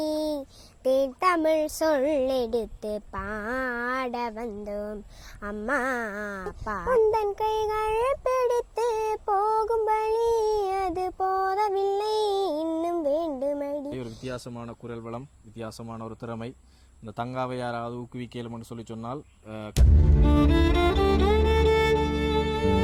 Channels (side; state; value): both; identical; correlation 1.00